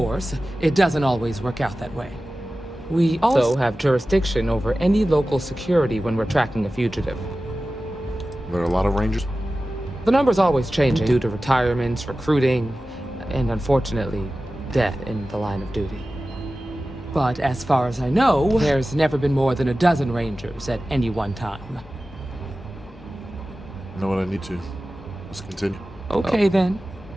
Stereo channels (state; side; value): normal; both; correlation 0.95